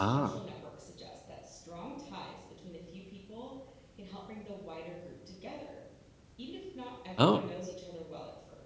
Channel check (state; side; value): identical; both; correlation 1.00